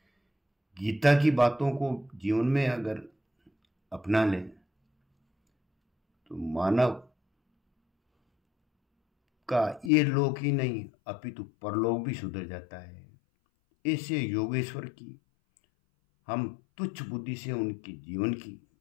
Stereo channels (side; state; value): right; drops out; at 9.9 s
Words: गीता की बातों को जीवन में अगर अपना ले तो मानव का ये लोक ही नहीं अपितु परलोक भी सुधर जाता है। ऐसे योगेश्वर की हम तुच्छ बुद्धि से उनकी जीवन की